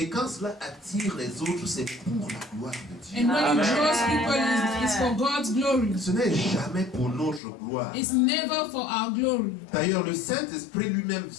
quand cela attire les autres, c'est pour la gloire de Dieu. And when it draws people, it's for God's glory. Ce n'est jamais pour notre gloire. It's never for our glory. D'ailleurs, le Saint-Esprit lui-même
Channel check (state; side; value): drops out; right; at 7.4 s